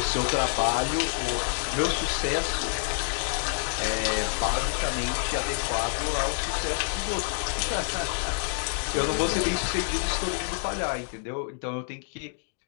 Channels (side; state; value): right; silent; 60 dB below the other